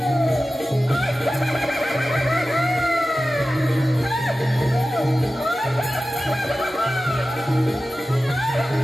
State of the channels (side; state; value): both; normal; correlation 0.94